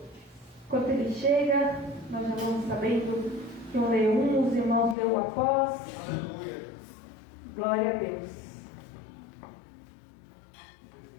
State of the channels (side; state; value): right; drops out; at 5.0 s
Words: Enquanto ele chega, nós já vamos sabendo que eu leio um, os irmãos leem após. Aleluia. Glória a Deus.